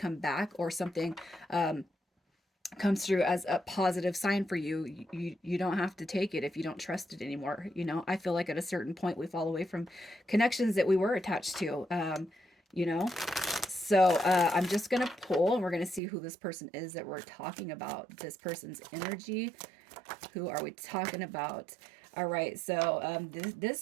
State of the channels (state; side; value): drops out; left; at 16.0 s